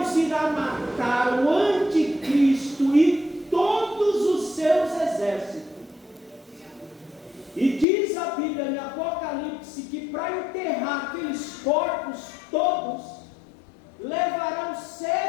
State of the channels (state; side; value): drops out; right; at 7.9 s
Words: irá matar o anticristo e todos os seus exércitos. E diz a Bíblia em Apocalipse que para enterrar aqueles corpos todos, levarão